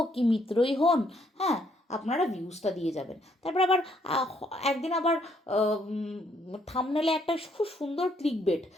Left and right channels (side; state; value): both; normal; correlation 0.70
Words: কি মিত্রই হন, হ্যাঁ, আপনারা ভিউজটা দিয়ে যাবেন। তারপর আবার একদিন আবার থাম্বনেলে একটা খুব সুন্দর ক্লিকবেট,